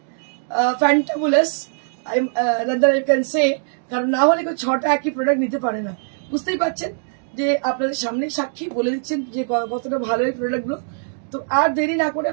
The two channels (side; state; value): left; silent; digital silence